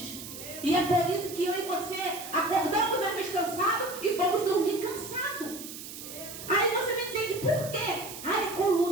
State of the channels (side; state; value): right; noise; hiss, 11 dB below the sound